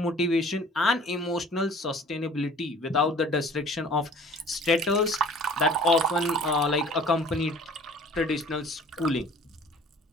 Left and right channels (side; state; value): both; normal; correlation 0.49